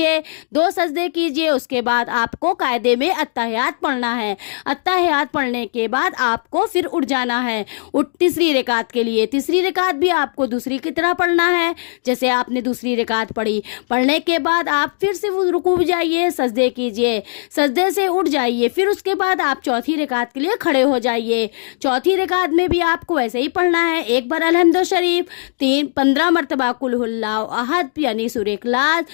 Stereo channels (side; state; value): right; silent; digital silence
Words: 2 सजदे कीजिए। उसके बाद आपको कायदे में अत्तहियात पढ़ना है। अत्तहियात पढ़ने के बाद आपको फिर उठ जाना है तीसरी रकात के लिए। तीसरी रकात भी आपको दूसरी की तरह पढ़ना है जैसे आपने दूसरी रकात पढ़ी। पढ़ने के बाद आप फिर से रुकू जाइए, सजदे कीजिए, सजदे से उठ जाइए। फिर उसके बाद आप चौथी रकात के लिए खड़े हो जाइए। चौथी रकात में भी आपको ऐसे ही पढ़ना है। एक बार अलहम्द शरीफ, 15 मरतबा कुल हुवल्लाहु अहद यानी सूरह इखलास।